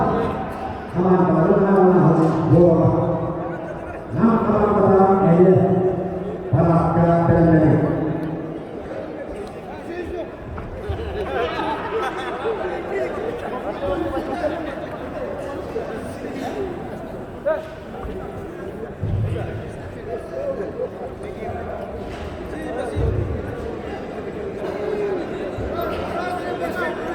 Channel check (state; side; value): identical; both; correlation 1.00